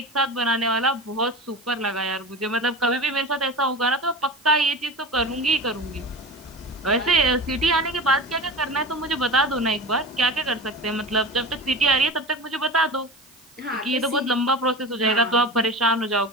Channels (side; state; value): right; noise; hiss, 27 dB below the sound